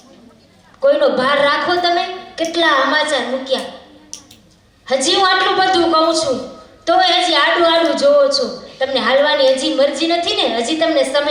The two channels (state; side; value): identical; both; correlation 1.00